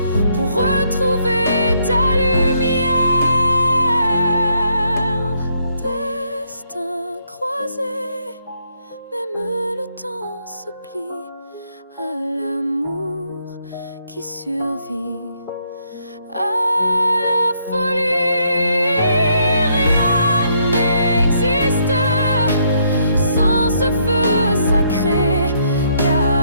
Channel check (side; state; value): both; inverted; correlation -0.72